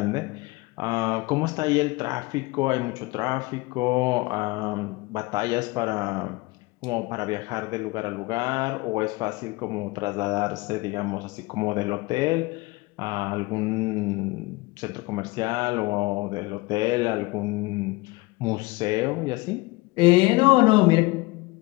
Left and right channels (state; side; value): quieter; right; 23.2 dB